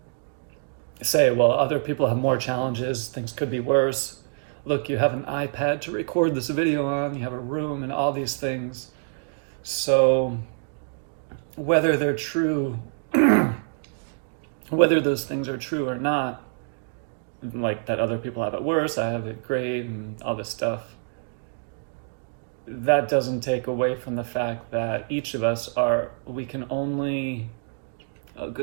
say, well, other people have more challenges, things could be worse. Look, you have an iPad to record this video on, you have a room and all these things. So whether they're true, whether those things are true or not, like that other people have it worse, I have it great, and all this stuff, that doesn't take away from the fact that each of us we can only, oh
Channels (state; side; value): silent; left; digital silence